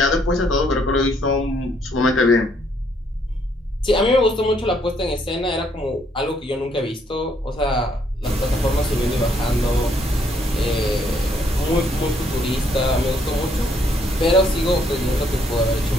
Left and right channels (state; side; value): normal; both; correlation 0.69